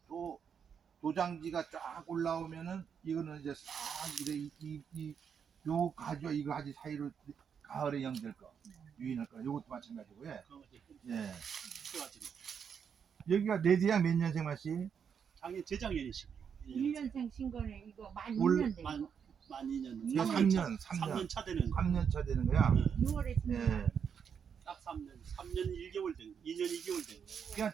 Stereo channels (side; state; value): left; quieter; 7.2 dB